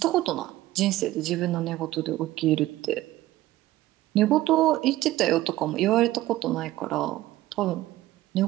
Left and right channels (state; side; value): quieter; left; 16.0 dB